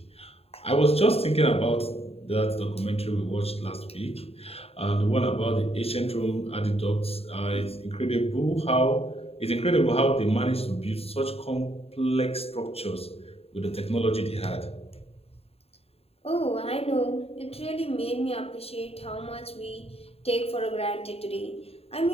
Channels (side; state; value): right; late; 0.29 ms